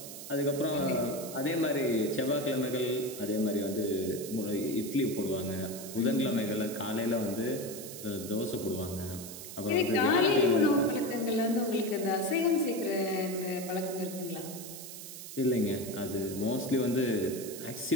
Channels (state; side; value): noise; right; hiss, 11 dB below the sound